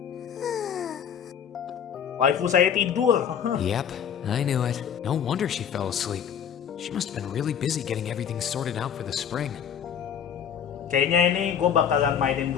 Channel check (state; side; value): quieter; right; 8.3 dB